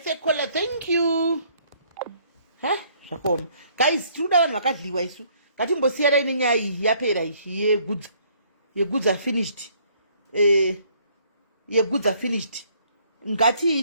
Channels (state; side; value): inverted; both; correlation -0.64